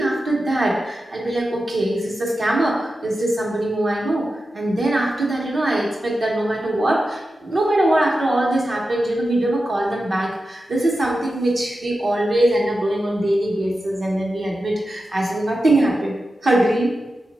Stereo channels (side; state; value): both; normal; correlation 0.91